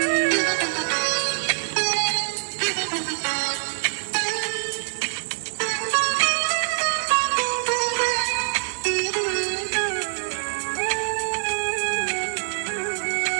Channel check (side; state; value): left; silent; 62 dB below the other